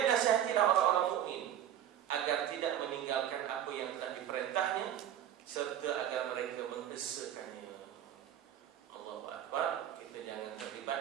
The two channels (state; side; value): quieter; left; 10.6 dB